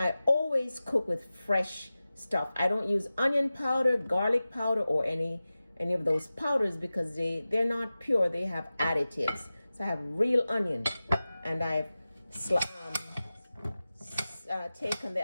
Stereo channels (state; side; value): inverted; both; correlation -0.96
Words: always cook with fresh stuff. I don't use onion powder, garlic powder, or any of those powders because they're not pure. They have additives. So I have real onion, and I've taken the